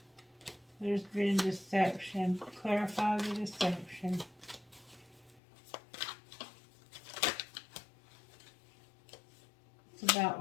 There's been deception. Clarify the deception. It's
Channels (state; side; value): drops out; right; at 5.4 s